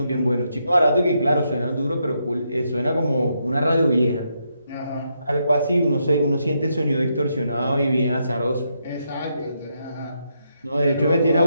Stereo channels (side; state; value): both; inverted; correlation -0.80